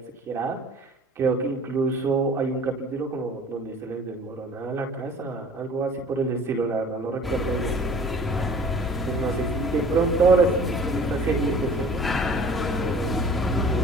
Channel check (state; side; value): normal; both; correlation 0.48